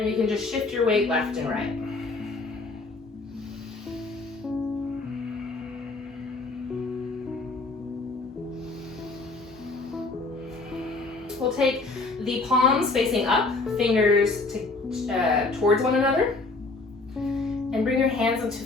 you can just shift your weight left and right. We'll take the palms facing up, fingers towards one another, and bring your hands into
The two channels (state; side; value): quieter; right; 3.5 dB